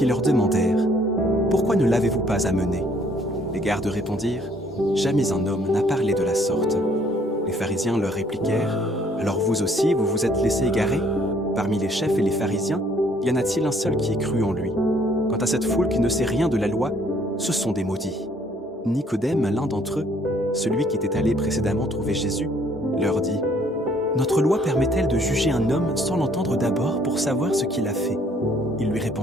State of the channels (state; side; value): normal; both; correlation 0.63